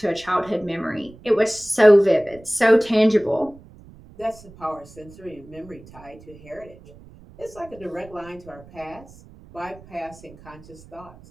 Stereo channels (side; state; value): right; noise; rumble, 22 dB below the sound